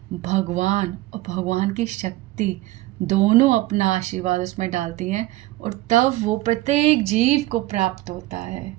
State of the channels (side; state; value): left; quieter; 17.7 dB